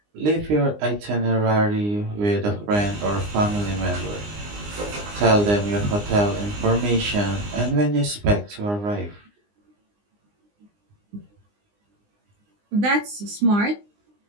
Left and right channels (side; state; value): left; late; 19 ms